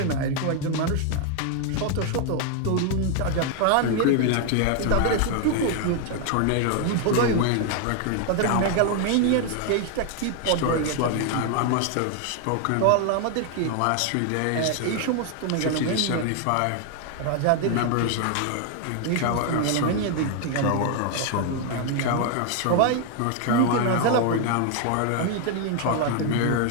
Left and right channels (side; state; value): both; different; correlation 0.00